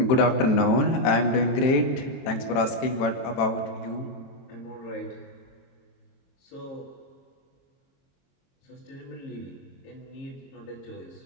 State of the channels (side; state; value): right; late; 23 ms